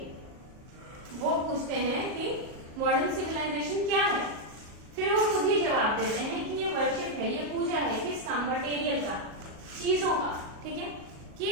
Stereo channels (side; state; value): left; late; 38 ms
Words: वो पूछते हैं कि मॉडर्न सिविलाइजेशन क्या है, फिर वो खुद ही जवाब देते हैं कि ये वर्शिप है, ये पूजा है किसका? मटेरियल का, चीजों का। ठीक है, कि